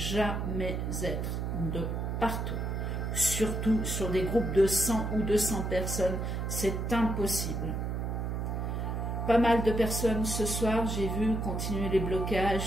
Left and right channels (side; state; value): right; noise; hum, 2 dB below the sound